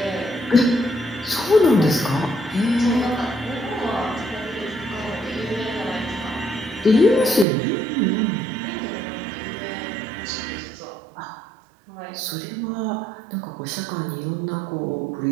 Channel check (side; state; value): left; drops out; at 7.5 s